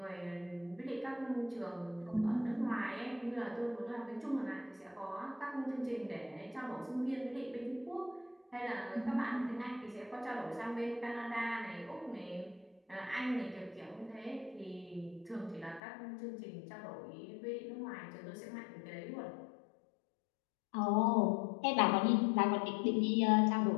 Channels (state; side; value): drops out; right; at 15.8 s